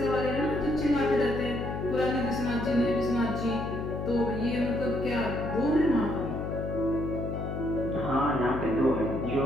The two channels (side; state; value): left; noise; hum, 4 dB below the sound